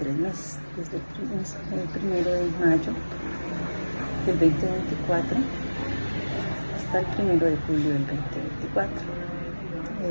meses, desde el 1 de mayo del 2024 hasta el 1 de julio del 2024.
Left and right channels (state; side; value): inverted; both; correlation -1.00